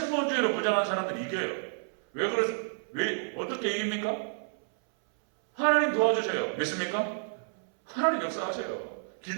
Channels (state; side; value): silent; left; 58 dB below the other